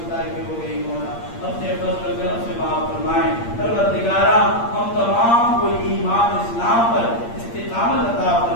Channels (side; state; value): right; late; 8.6 ms